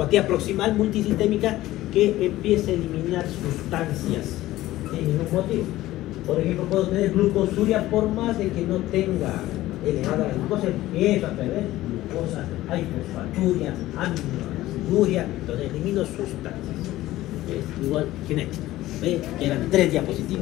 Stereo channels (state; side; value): quieter; right; 16.0 dB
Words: proximal multisistémica que empieza a eliminar sustancias sin ningún motivo. Por ejemplo, puedo tener glucosuria por más de que no tenga elevada la glucosa, empieza a perder glucosa, hay fosfaturia, aminoáciduria, entonces elimino sustancias. Es igual genético. ¿Ve? Que eran 3